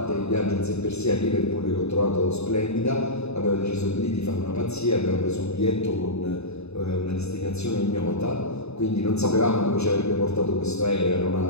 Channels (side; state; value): right; late; 0.80 ms